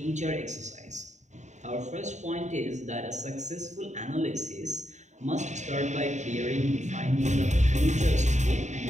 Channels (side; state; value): left; late; 0.34 ms